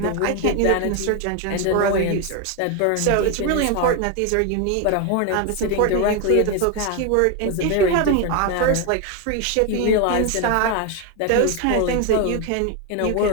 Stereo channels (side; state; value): both; different; correlation 0.02